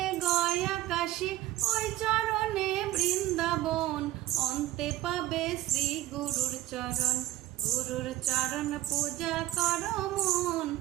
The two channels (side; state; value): left; quieter; 15.0 dB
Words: গয়া কাশী, ওই চরণে বৃন্দাবন, অন্তে পাবে শ্রী গুরুর চরণ। গুরুর চরণ পূজা করো মন,